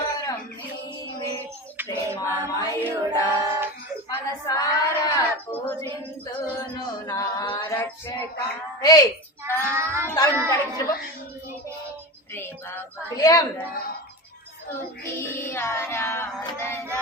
నీవే ప్రేమమయుడా మనసారా పూజింతును నా రక్షక హే తాను కడిగి విలియం స్తుతి ఆరాధన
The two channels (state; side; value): normal; both; correlation 0.25